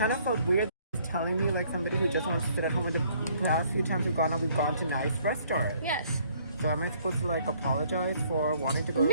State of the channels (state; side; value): inverted; both; correlation -0.63